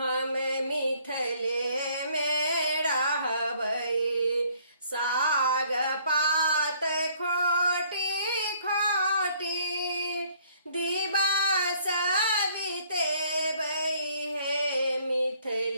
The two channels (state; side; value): inverted; both; correlation -0.62